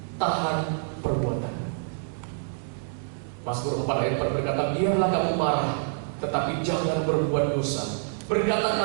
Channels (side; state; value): left; silent; digital silence